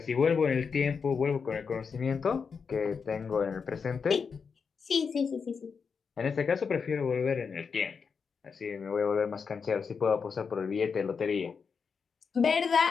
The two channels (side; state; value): right; quieter; 5.7 dB